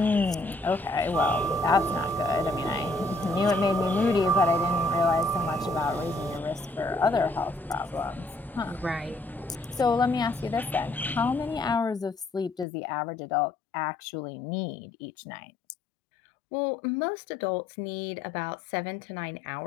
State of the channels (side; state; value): right; drops out; at 12.7 s